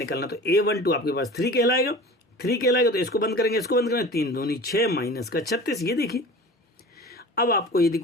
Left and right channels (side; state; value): both; normal; correlation 0.38